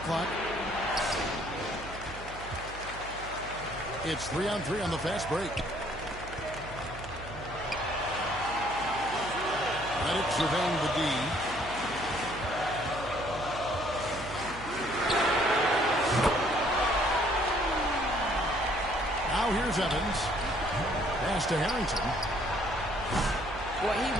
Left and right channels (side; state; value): right; noise; hum, 14 dB below the sound